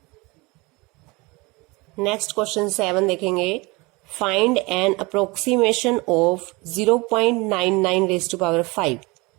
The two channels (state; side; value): quieter; left; 25.0 dB